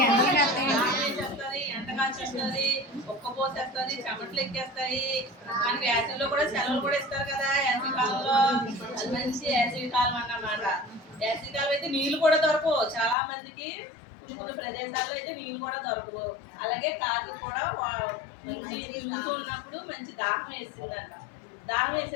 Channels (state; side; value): drops out; right; at 13.2 s